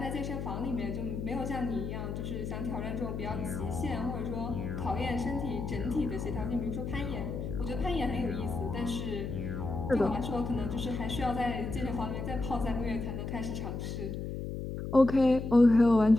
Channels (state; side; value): noise; left; hum, 5 dB below the sound